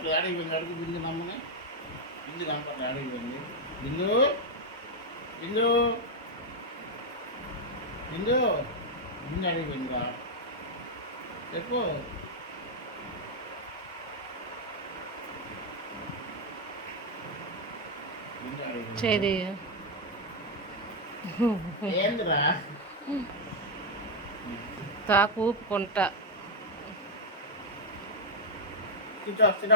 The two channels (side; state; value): both; normal; correlation 0.01